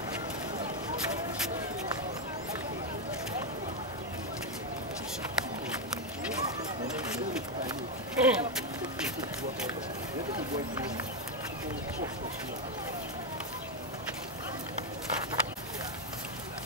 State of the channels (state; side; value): normal; both; correlation 0.04